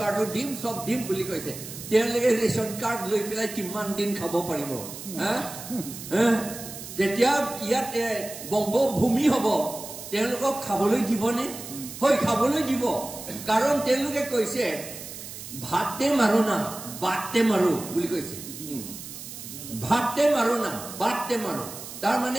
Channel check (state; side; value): noise; right; hiss, 11 dB below the sound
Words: কাৰ্ডো দিম সব দিম বুলি কৈছে তেওঁলোকে ৰেচন কাৰ্ড লৈ পেলাই কিমান দিন খাব পাৰিব যেতিয়া ইয়াত বংগভূমি হ'ব তেওঁলোকক খাবলৈ দিবনে হয় খাবলৈ দিব কাৰণ তেওঁলোকে কৈছে ভাতে মাৰো না বাটে মাৰো বুলি কৈছে ভাতে মাৰো না বাটে মাৰো তাৰ